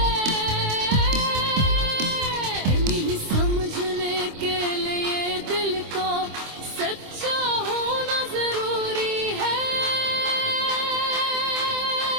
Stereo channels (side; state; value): left; late; 25 ms